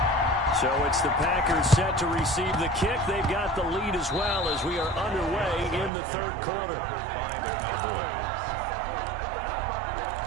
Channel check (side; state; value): left; drops out; at 5.9 s